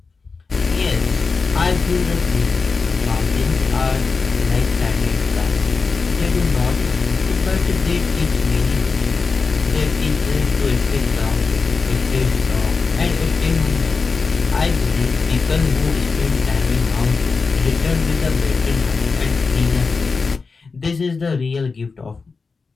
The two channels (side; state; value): right; quieter; 4.5 dB